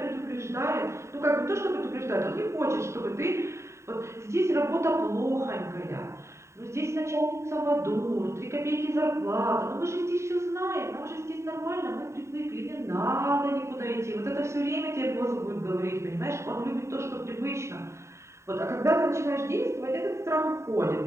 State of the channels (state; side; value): late; left; 0.14 ms